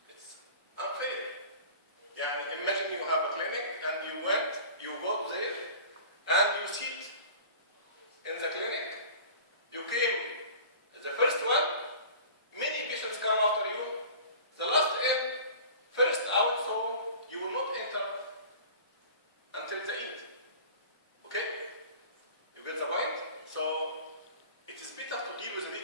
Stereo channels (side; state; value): both; inverted; correlation -0.41